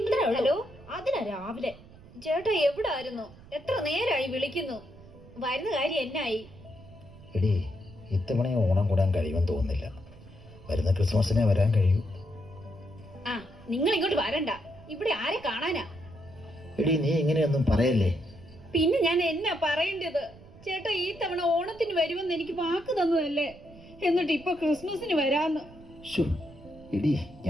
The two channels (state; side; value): noise; right; rumble, 21 dB below the sound